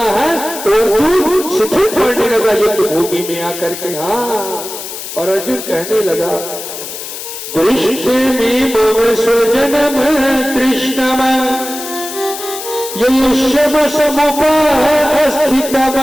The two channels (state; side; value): noise; left; hiss, 9 dB below the sound